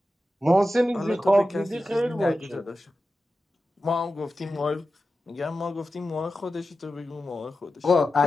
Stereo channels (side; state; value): both; normal; correlation 0.93